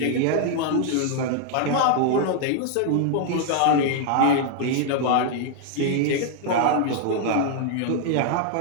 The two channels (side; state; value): both; different; correlation 0.00